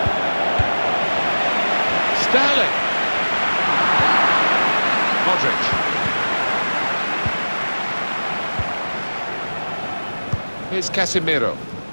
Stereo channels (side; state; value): both; inverted; correlation -1.00